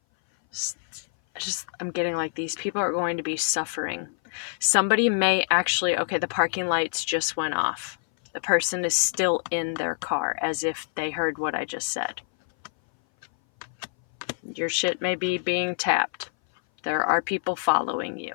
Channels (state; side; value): silent; right; 59 dB below the other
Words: I'm getting like these people are going to be suffering. Somebody may actually, okay, the parking lights just went off. The person is still in their car as if they heard what I just said. Your shit may be being tapped. There are people following you,